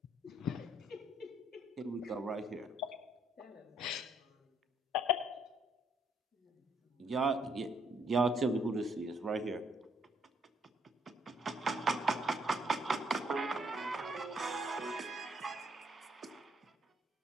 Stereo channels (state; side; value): normal; both; correlation 0.69